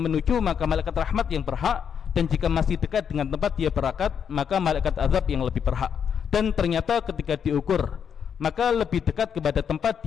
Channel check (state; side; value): quieter; right; 7.6 dB